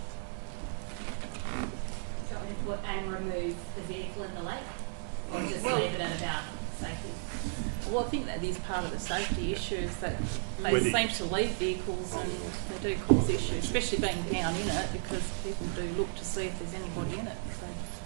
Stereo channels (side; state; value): left; silent; digital silence